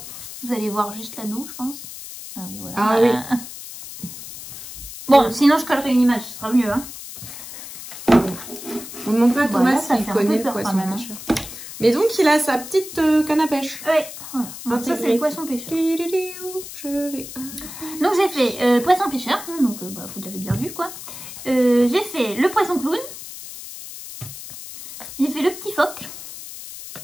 Vous allez voir juste l'anneau, je pense. Ah oui, voilà. Ah oui. Bon, sinon, je collerai une image, ce sera mieux, hein. On ne demande pas à Thomas s'il connaît le poisson pêcheur. Mais donc, il a sa petite canne à pêche. Ouais, voilà. Donc ça, c'est le poisson pêcheur. Donc, j'ai fait poisson pêcheur. Donc, bah, vous l'avez bien vu, quoi. J'ai fait le poisson clown. J'ai fait le petit phoque.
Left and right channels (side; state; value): left; noise; hiss, 12 dB below the sound